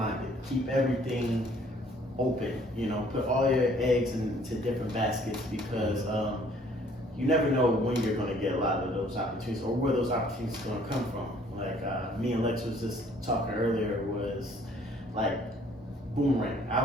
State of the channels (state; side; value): normal; both; correlation 0.59